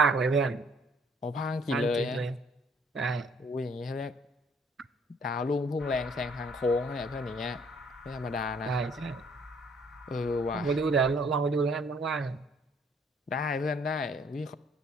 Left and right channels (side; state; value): both; normal; correlation 0.62